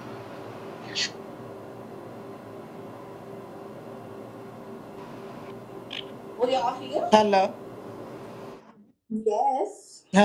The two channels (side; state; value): both; identical; correlation 1.00